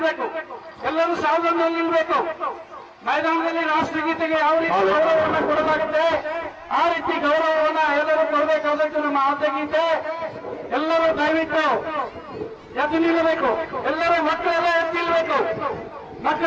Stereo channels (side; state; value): both; identical; correlation 1.00